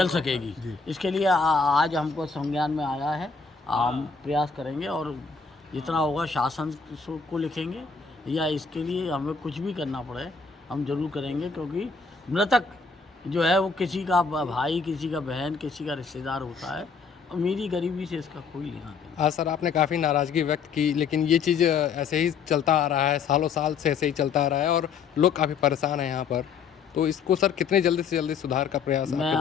सकेगी। इसके लिए आज हमको संज्ञान में आया है। हम प्रयास करेंगे और जितना होगा शासन को लिखेंगे, या इसके लिए हमें कुछ भी करना पड़े हम जरूर करेंगे, क्योंकि मृतक जो है वो किसी का भाई, किसी का बहन, किसी का रिश्तेदार होता है। अमीरी गरीबी से इसका कोई लेना देना। हाँ सर, आपने काफ़ी नाराज़गी व्यक्त की, लेकिन ये चीज़ ऐसे ही चलता आ रहा है, सालों साल से ऐसे ही चलता आ रहा है और लोग काफ़ी परेशान हैं यहाँ पर। तो इसको सर कितने जल्दी से जल्दी सुधार का प्रयास आपके द्वारा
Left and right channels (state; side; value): quieter; right; 5.4 dB